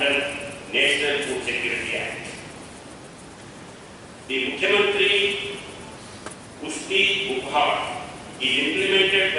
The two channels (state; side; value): identical; both; correlation 1.00